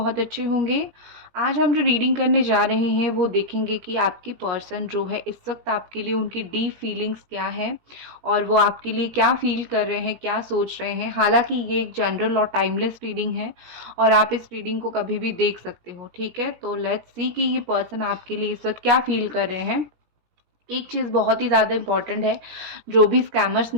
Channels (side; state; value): left; late; 17 ms